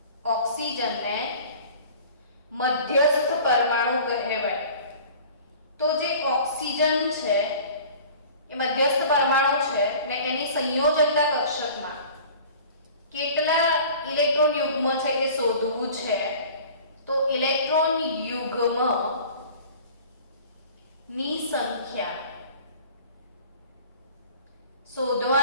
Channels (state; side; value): inverted; both; correlation -0.45